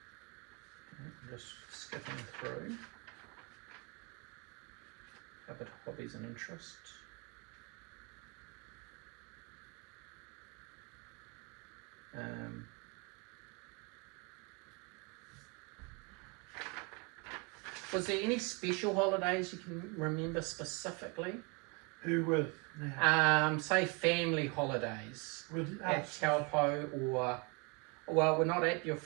Just skipping through. Covered hobbies and interests. Was there any special holidays you can remember specifically? Who with now? Say family holidays With at us. Taupo, or well, we're not at your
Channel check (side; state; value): left; quieter; 31.5 dB